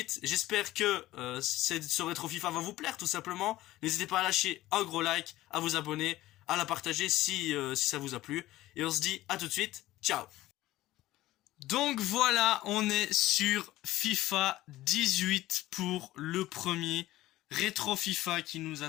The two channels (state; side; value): quieter; right; 16.2 dB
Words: J'espère que ce rétro FIFA va vous plaire tout simplement. N'hésitez pas à lâcher un gros like, à vous abonner, à la partager si ça vous a plu. Et on se dit à tout de suite. Ciao. Donc voilà, on est sur FIFA 18 pour le premier rétro FIFA qui nous